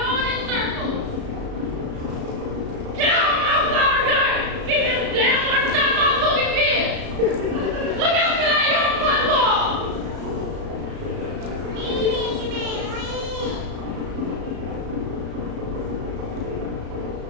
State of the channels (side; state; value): left; late; 34 ms